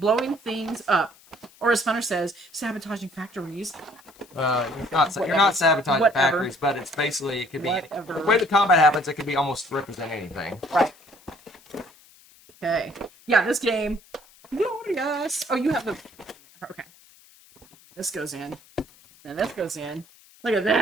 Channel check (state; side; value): noise; left; hiss, 26 dB below the sound